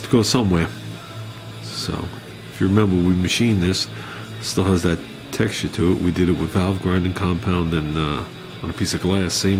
to go somewhere. So, if you remember, we machined this. It still has that texture to it. We did it with valve grinding compound and on a piece of glass.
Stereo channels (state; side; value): identical; both; correlation 1.00